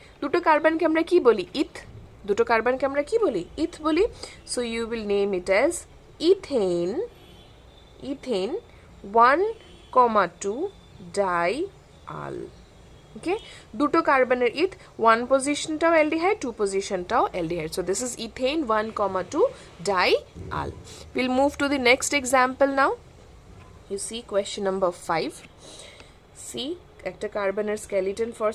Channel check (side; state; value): both; identical; correlation 1.00